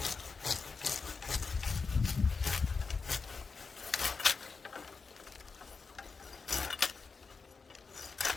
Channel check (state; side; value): quieter; right; 4.7 dB